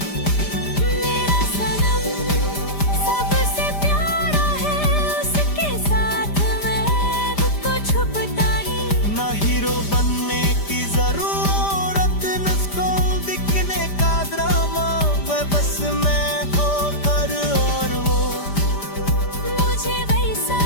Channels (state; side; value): late; right; 5.0 ms